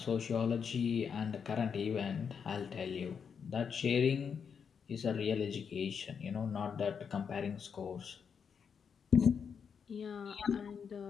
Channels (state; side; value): quieter; right; 6.7 dB